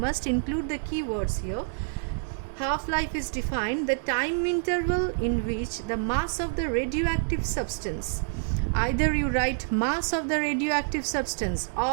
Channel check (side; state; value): left; silent; digital silence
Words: include the keywords here. Half-life is defined the time interval in which the mass of the radioactive substance, either you write mass of the radioactive substance